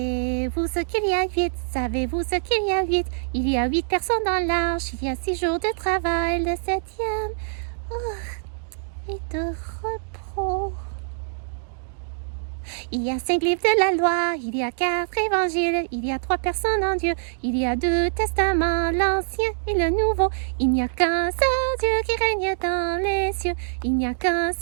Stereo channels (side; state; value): left; silent; digital silence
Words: ce qu'il y a 8? Savez-vous ce qu'il y a 8? Il y a 8 personnes dans l'arche, il y a 6 jours de travail, le 7e est de repos. Il y a 5 livres de la loi, il y a 4 évangiles, il y a 3 personnes en Dieu, il y a 2 testaments, l'Ancien et le Nouveau. Il n'y a qu'un seul Dieu qui règne dans les cieux, il n'y a qu'un